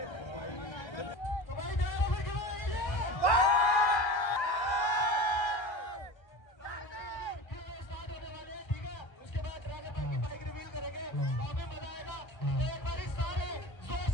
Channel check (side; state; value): right; late; 1.3 ms